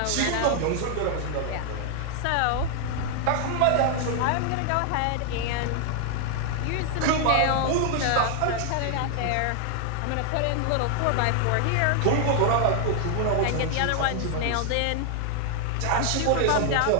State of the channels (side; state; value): both; different; correlation 0.00